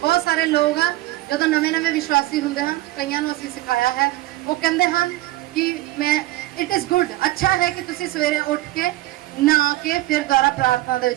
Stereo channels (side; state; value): left; quieter; 17.4 dB